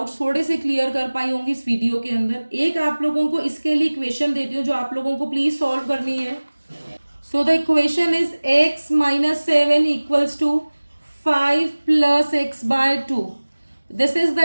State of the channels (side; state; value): both; inverted; correlation -1.00